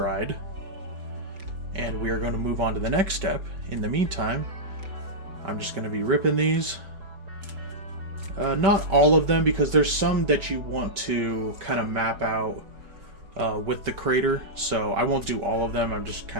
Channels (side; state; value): left; late; 5.2 ms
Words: and we are going to move on to the next step. In the meantime, I'm just going to be ripping these. Not all of them, because there's some that you want to kind of map out with the crater, so I won't do all of them. I'm just